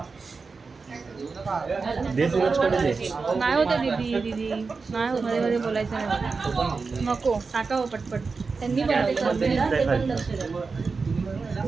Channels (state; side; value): quieter; left; 4.5 dB